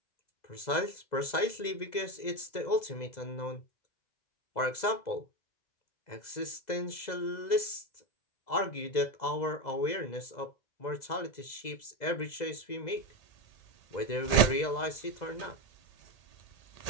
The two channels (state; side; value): late; right; 2.0 ms